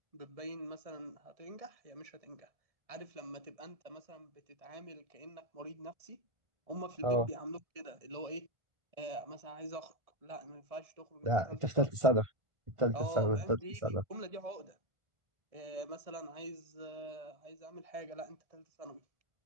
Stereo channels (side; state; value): left; late; 1.5 ms